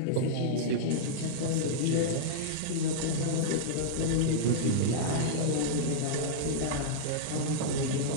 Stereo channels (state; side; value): different; both; correlation -0.02